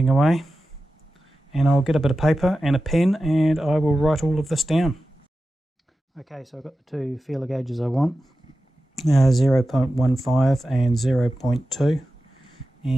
away, and I'll get a bit of paper and a pen and I will write all of this down. Okay, so I've got the 2 feeler gauges I want, 0.15 and 0.2,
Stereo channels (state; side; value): normal; both; correlation 0.93